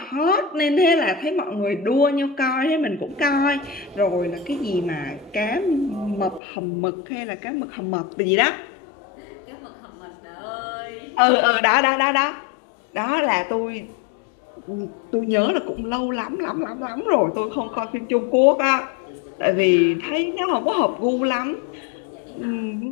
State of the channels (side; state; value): right; drops out; at 6.4 s